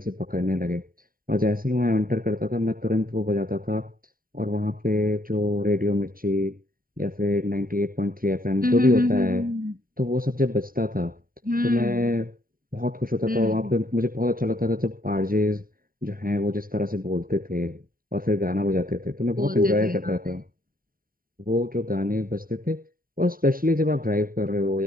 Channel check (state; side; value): late; left; 0.41 ms